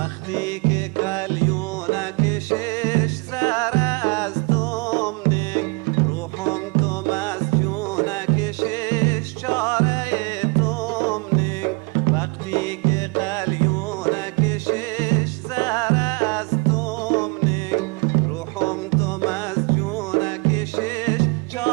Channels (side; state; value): left; quieter; 29.9 dB